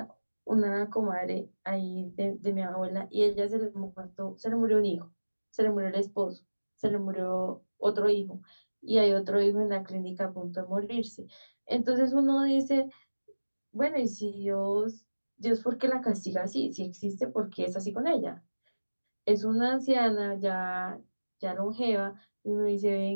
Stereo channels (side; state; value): both; inverted; correlation -1.00